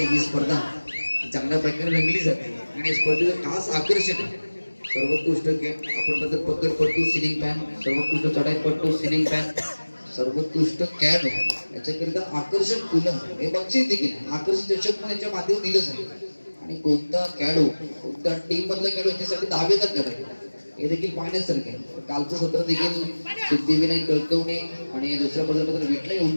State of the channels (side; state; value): both; inverted; correlation -1.00